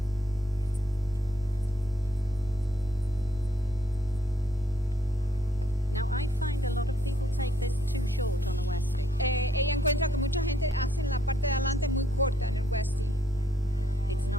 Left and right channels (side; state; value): right; noise; rumble, 16 dB below the sound